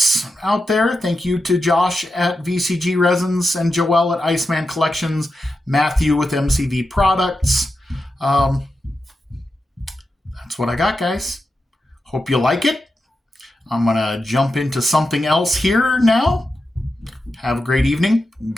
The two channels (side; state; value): both; normal; correlation 0.89